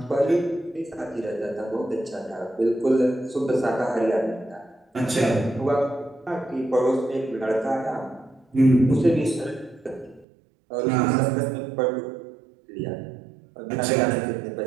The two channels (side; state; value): left; drops out; at 10.2 s